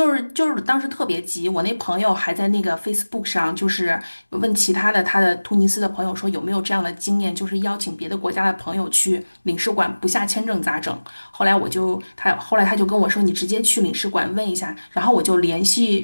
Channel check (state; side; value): inverted; both; correlation -1.00